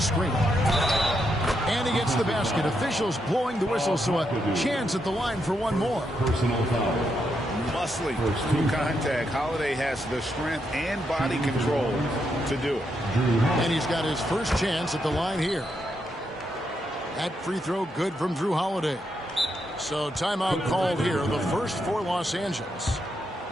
And he gets the basket. Officials blowing the whistle, so a chance at the line for one more. Personal foul. Muscling through contact. Holiday has the strength and body control to do it. And he's got his first chance at the line here. That free throw good from Drew Holiday. So timeout called here, the first for Los Angeles.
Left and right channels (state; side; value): normal; both; correlation 0.81